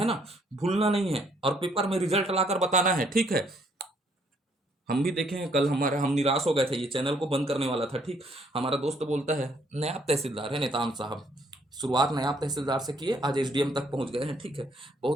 ना, भूलना नहीं है और पेपर में रिजल्ट लाकर बताना है। ठीक है, हम भी देखे हैं कल, हमारा हम निराश हो गए थे, ये चैनल को बंद करने वाला था। ठीक, हमारा दोस्त बोलता है, नायब तहसीलदार है नेताम साहब, शुरुआत नायब तहसीलदार से किए, आज एसडीएम तक पहुंच गए हैं। ठीक है,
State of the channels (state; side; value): normal; both; correlation 0.67